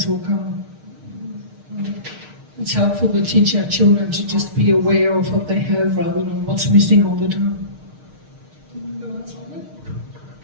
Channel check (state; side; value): late; left; 6.5 ms